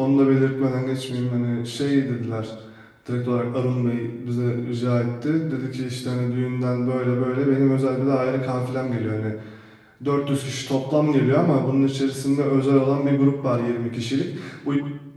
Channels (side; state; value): both; identical; correlation 1.00